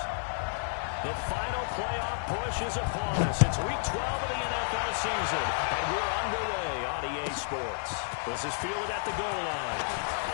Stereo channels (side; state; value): right; silent; digital silence